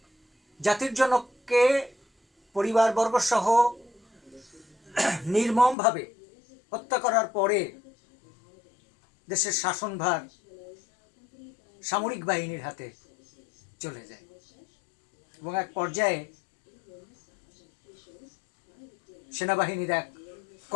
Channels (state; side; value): drops out; right; at 5.8 s